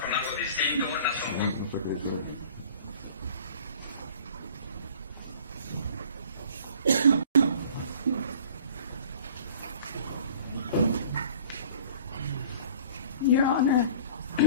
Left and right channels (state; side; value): inverted; both; correlation -0.48